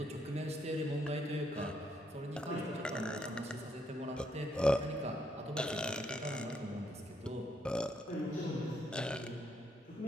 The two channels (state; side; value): normal; both; correlation 0.74